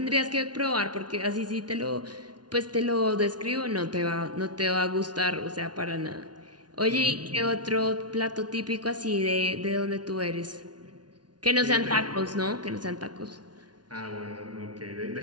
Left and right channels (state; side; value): late; left; 0.69 ms